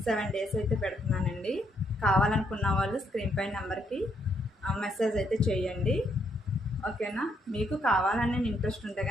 7 డేస్ అయితే పెడుతున్నానండి. కావాలనుకున్న వాళ్ళు స్క్రీన్ పై నెంబర్కి మెసేజ్ అయితే చేయండి. ఓకేనా? మీకు కావాలని ఇంట్రెస్ట్ ఉంటే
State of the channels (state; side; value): normal; both; correlation 0.74